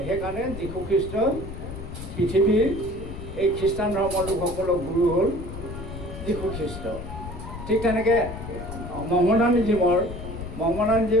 সেইকাৰণে যীশু খ্ৰীষ্ট পৃথিৱীৰ এই খ্ৰীষ্টান ধৰ্মৰ লোকসকলৰ গুৰু হ'ল যীশু খ্ৰীষ্ট। ঠিক তেনেকৈ মহম্মদানিজিমৰ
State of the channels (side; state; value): left; noise; rumble, 10 dB below the sound